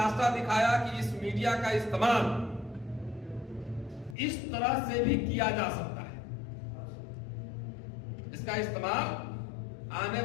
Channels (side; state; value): right; drops out; at 4.2 s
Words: दिखाया कि इस मीडिया का इस्तेमाल इस तरह से भी किया जा सकता है। इसका इस्तेमाल आने